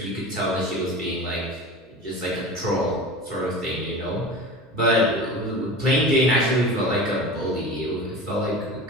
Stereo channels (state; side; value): normal; both; correlation 0.33